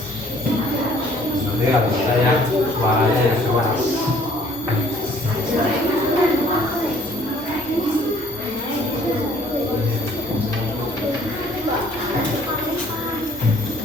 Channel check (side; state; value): both; normal; correlation 0.58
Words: Nanti kalau saya suaranya yang keras.